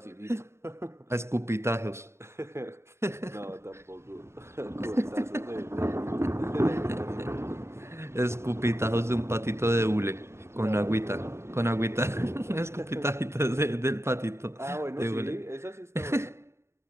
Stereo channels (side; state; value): left; late; 0.13 ms